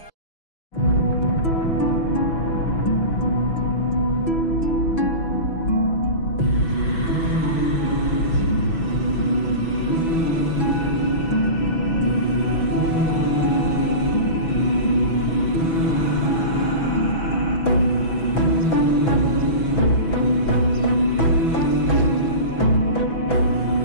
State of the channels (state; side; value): late; right; 6.1 ms